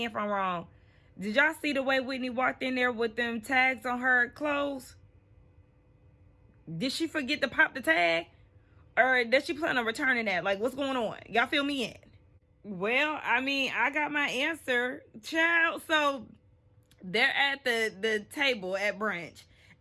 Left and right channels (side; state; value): both; identical; correlation 1.00